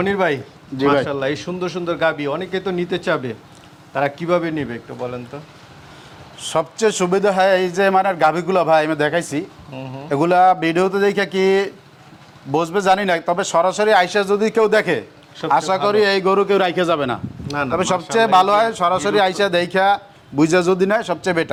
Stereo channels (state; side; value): identical; both; correlation 1.00